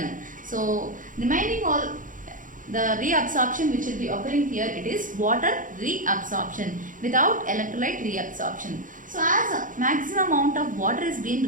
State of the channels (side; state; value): left; late; 0.38 ms